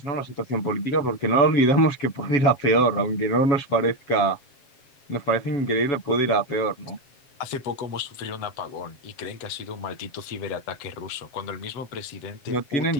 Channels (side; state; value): right; late; 7.4 ms